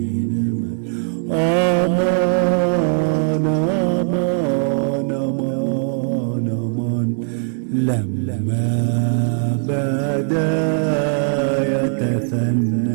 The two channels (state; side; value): silent; left; digital silence